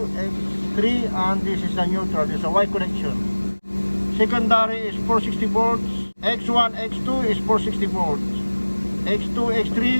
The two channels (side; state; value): both; inverted; correlation -1.00